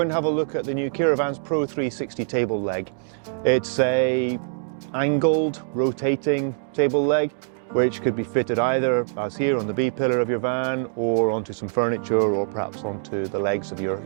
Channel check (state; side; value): silent; left; digital silence